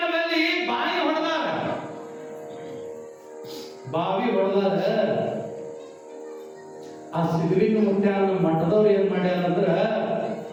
ಬಾವಿ ಹೊಡೆದಾರ, ಬಾವಿ ಹೊಡೆದಾರ. ಆ ಸಿದ್ಧಲಿಂಗ ಮುತ್ಯಾನ ಮಠದವ್ರು ಏನ್ ಮಾಡ್ಯಾರ ಅಂದ್ರ,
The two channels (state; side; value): identical; both; correlation 1.00